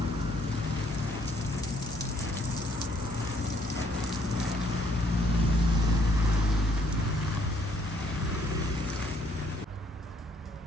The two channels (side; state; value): both; normal; correlation 0.66